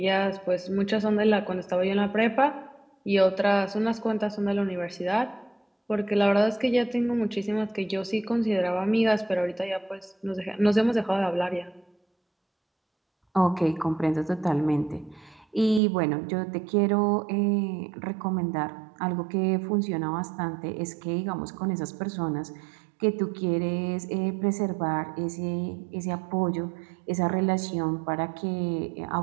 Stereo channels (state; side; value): drops out; left; at 15.8 s